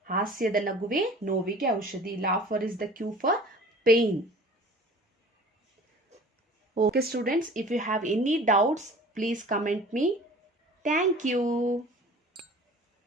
ಹಾಸ್ಯದ ನಗುವೆ ನೋವಿಗೆ ಔಷಧಿ. Laughter is the cure for pain. Okay students, if you have any doubts, please comment me. Thank you.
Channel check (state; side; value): normal; both; correlation 0.45